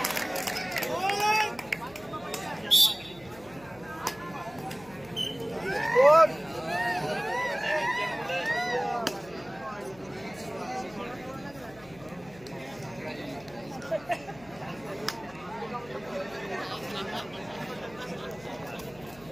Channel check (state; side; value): noise; left; hum, 22 dB below the sound